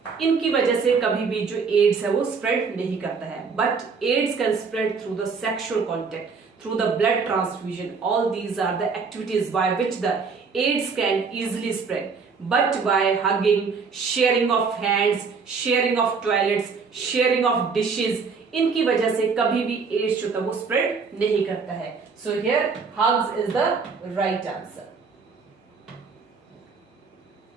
इनकी वजह से कभी भी जो एड्स है वो स्प्रेड नहीं करता है। But AIDS can spread through the sexual contact, through the blood transfusion. All these are the activities by which the AIDS can easily spread. But by hugging, sharing of hands, sharing of toilets, sharing of dishes, इनकी वजह से कभी भी ads जो था वो spread नहीं करता है। So here hugs is the right answer.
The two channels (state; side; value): quieter; left; 5.1 dB